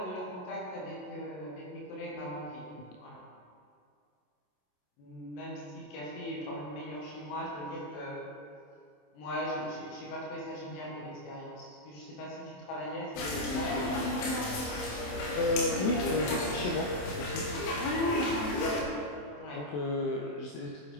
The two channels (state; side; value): late; right; 27 ms